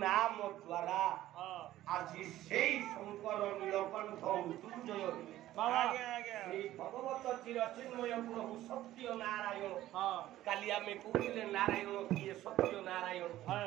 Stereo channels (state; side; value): quieter; left; 14.4 dB